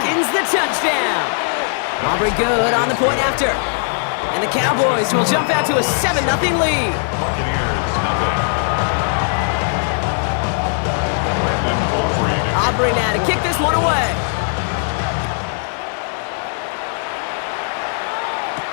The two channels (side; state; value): right; silent; 67 dB below the other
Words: the touchdown. Aubrey good on the point after. And the Cowboys will jump out to a 7-0 lead. Aubrey now to kick this one away.